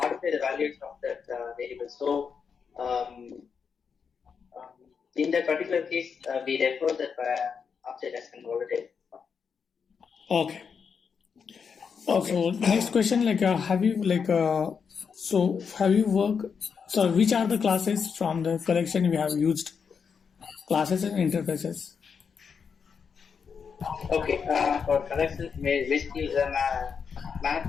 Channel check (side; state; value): right; quieter; 6.2 dB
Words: the values of that variable. So, in that particular case, we refer that object as volatile. Okay. So next question, like, have you worked? So which are the classes from the collection you have used? Classes and interfaces. Okay, for collection, basically the